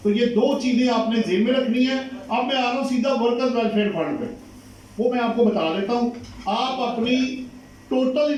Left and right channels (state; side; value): identical; both; correlation 1.00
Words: तो ये दो चीजें आपने जेब में रखनी है। अब मैं आ रहा हूं सीधा वर्कर्स वेलफेयर फंड पे, वो मैं आपको बता देता हूं। आप अपनी टोटल